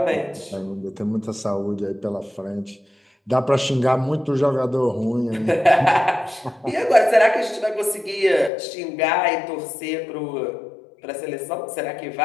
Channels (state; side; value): drops out; right; at 8.5 s